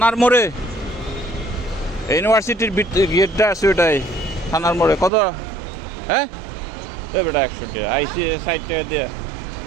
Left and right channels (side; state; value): left; drops out; at 5.1 s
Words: মোড়ে ইউনিভার্সিটির গেটটা আছে ওটাই থানার মোড়ে। কত? হ্যাঁ বেটা 100 টাকা। আইসি 60 টাকা দিয়ে